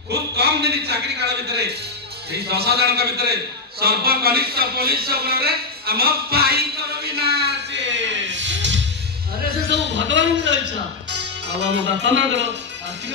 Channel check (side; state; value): right; quieter; 3.8 dB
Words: খুব কম দিন চাকরি কাଳ ଭିତରେ এই 10 ଜଣଙ୍କ ଭିତରେ ସର୍ବକନିଷ୍ଠ ପୋଲିସ ଗୁଣରେ ଆମ ଭାଇଙ୍କର ବିନାଶ अरे से सब भगवान की इच्छा अब हम बापा मां करो